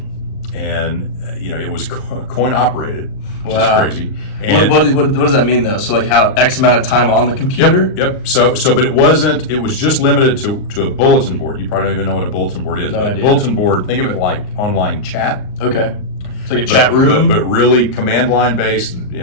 And, it was coin operated, which is crazy. And what does that mean, though? So, like, how X amount of time on the computer? Yep. So, but it was just limited to a bulletin board. You probably don't even know what a bulletin board is. No idea. Bulletin board, think of it like online chat. Okay. It's like a chat room? But really command line based,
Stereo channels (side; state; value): right; late; 39 ms